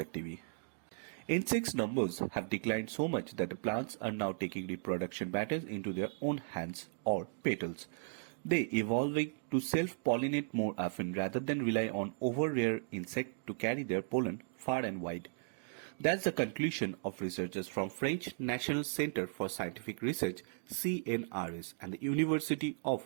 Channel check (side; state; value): left; silent; digital silence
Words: TV. Insects numbers have declined so much that the plants are now taking reproduction matters into their own hands or petals. They evolving to self-pollinate more often rather than rely on over-rare insect to carry their pollen far and wide. That's the conclusion of researchers from French National Center for Scientific Research (CNRS) and the University